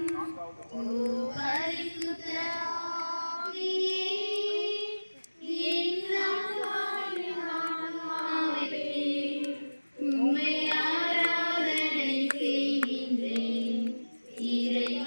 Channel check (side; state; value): both; inverted; correlation -1.00